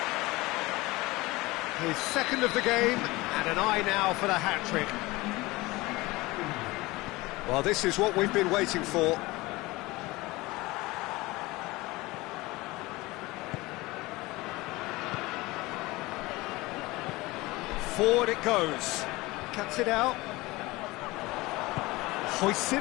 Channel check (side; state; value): right; quieter; 21.1 dB